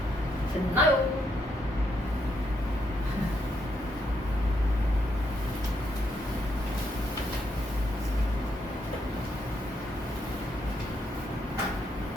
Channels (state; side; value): normal; both; correlation 0.77